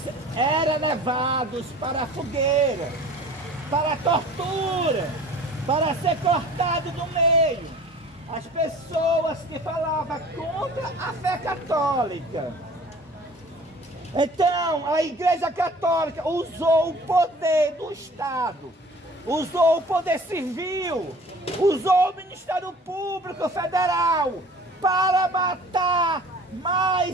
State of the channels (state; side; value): normal; both; correlation 0.46